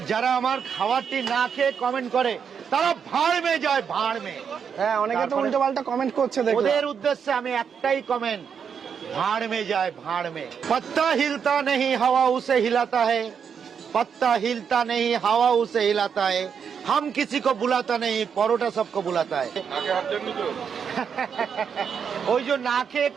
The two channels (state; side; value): quieter; left; 7.0 dB